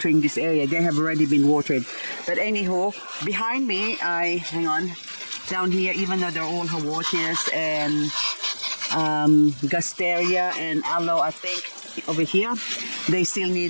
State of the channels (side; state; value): both; inverted; correlation -1.00